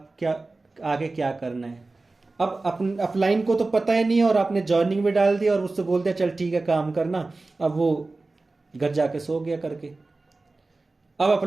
क्या आगे क्या करना है। अब अपलाइन को तो पता ही नहीं है और आपने जॉइनिंग में डाल दिया और उससे बोल दिया चल ठीक है काम करना, अब वो घर जाके सो गया करके। अब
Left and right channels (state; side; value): quieter; left; 3.4 dB